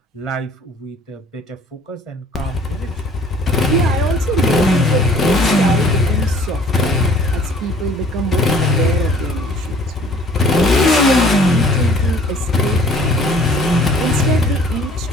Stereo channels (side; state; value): both; normal; correlation 0.54